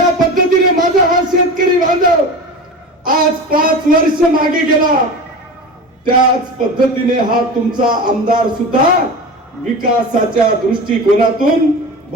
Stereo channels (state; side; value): normal; both; correlation 0.30